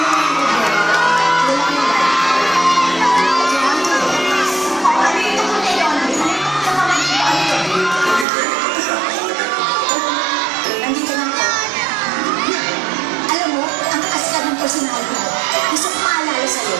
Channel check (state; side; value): drops out; left; at 8.2 s